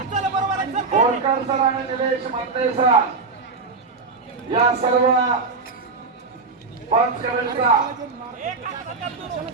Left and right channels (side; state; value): left; quieter; 4.3 dB